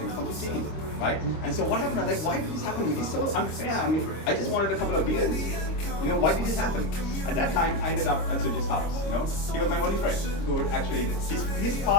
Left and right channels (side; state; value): right; late; 26 ms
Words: from 15, right? And so what happened? I was like, why did this happen to me? It's so unfair. I mean, I just wanted a couple of beers. Why did this happen? At that time, I ended up at Sujit's house. He was my only friend who would actually, his